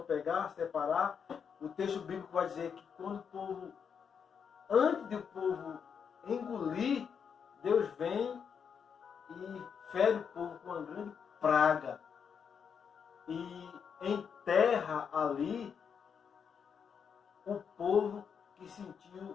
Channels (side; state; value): right; quieter; 6.9 dB